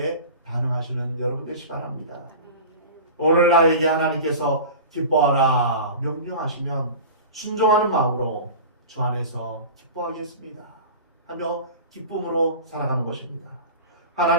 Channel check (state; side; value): inverted; both; correlation -0.34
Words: 반응하시는 여러분 되시기 바랍니다. 오늘 나에게 하나님께서 기뻐하라 명령하시면 순종하는 마음으로 주 안에서 기뻐하겠습니다 하며 기쁨으로 살아가는 것입니다.